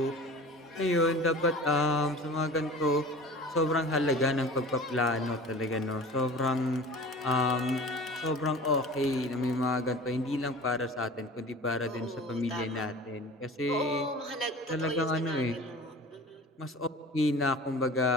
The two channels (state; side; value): normal; both; correlation 0.40